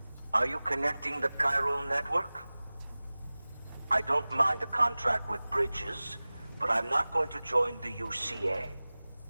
Are you connecting the chiral network? I don't mind a contract with Bridges, but I'm not going to join the UCA.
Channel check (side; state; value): both; inverted; correlation -0.99